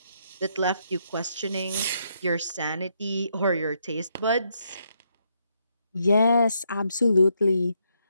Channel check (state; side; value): inverted; both; correlation -0.76